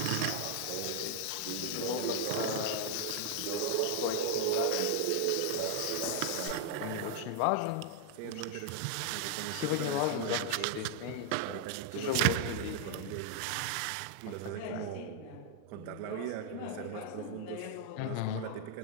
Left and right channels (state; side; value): different; both; correlation 0.00